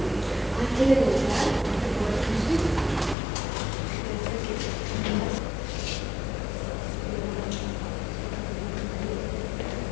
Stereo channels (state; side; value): drops out; right; at 3.2 s